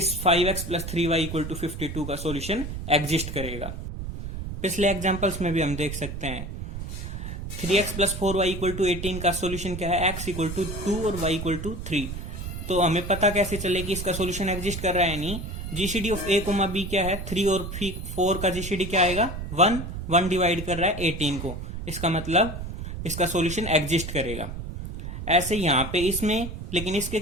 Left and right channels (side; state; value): right; noise; rumble, 7 dB below the sound